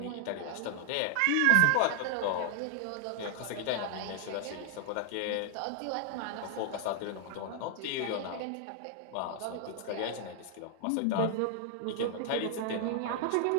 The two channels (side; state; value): both; different; correlation 0.00